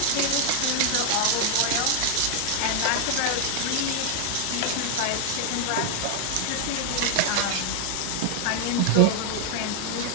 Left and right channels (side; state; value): both; different; correlation 0.00